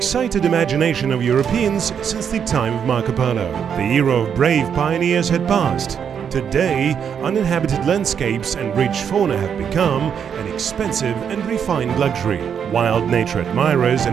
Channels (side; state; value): left; quieter; 7.7 dB